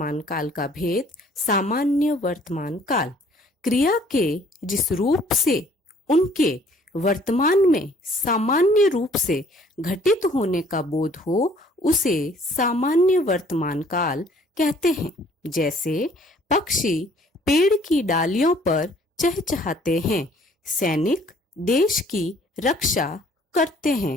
काल का भेद, सामान्य वर्तमान काल। क्रिया के जिस रूप से उनके वर्तमान में सामान्य रूप से घटित होने का बोध हो उसे सामान्य वर्तमान काल कहते हैं। जैसे पक्षी पेड़ की डालियों पर चहचहाते हैं, सैनिक देश की रक्षा करते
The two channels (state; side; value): normal; both; correlation 0.58